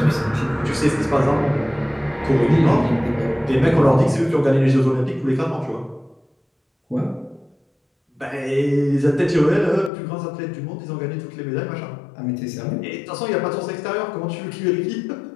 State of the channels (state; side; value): drops out; right; at 9.9 s